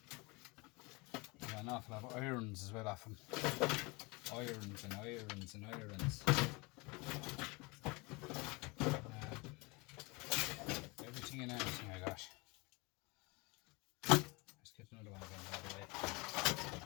Yeah, an awful lot of irons as well off them. Irons and irons and irons. Everything in everything I got. Let's get another one again, by the way.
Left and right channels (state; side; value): quieter; right; 26.7 dB